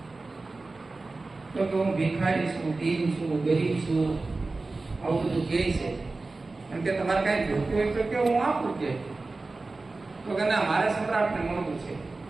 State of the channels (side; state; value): left; quieter; 3.5 dB